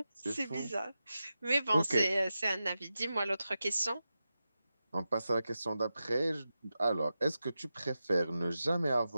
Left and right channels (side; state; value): both; inverted; correlation -0.92